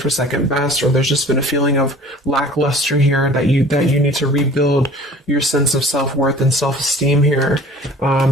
second best, or there's just been a feeling of lackluster here that you need to rebuild your sense of self-worth and self-esteem here.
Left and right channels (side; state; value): both; normal; correlation 0.47